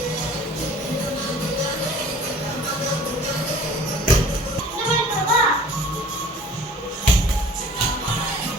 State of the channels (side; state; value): both; normal; correlation 0.48